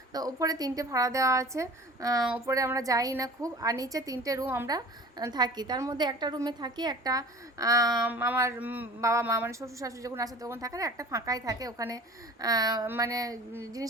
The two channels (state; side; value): normal; both; correlation 0.42